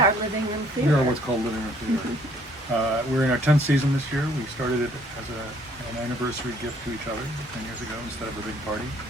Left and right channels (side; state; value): both; normal; correlation 0.61